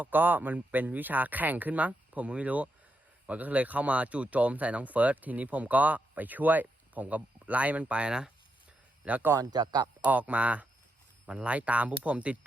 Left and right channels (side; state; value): both; normal; correlation 0.83